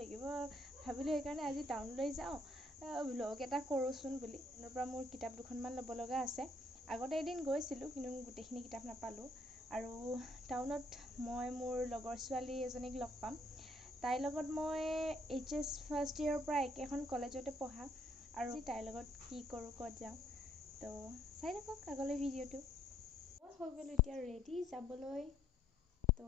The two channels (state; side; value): normal; both; correlation 0.67